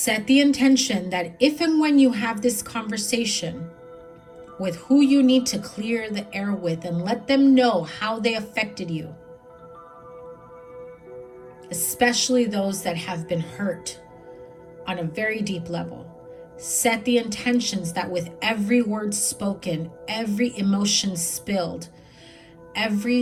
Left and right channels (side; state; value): both; identical; correlation 1.00